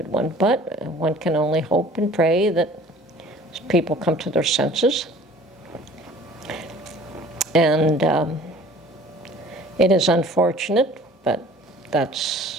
one, but one can only hope and pray that people come to their senses. And it is unfortunate, but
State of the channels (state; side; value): normal; both; correlation 0.49